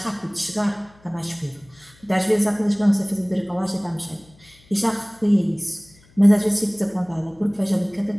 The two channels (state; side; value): noise; left; hum, 28 dB below the sound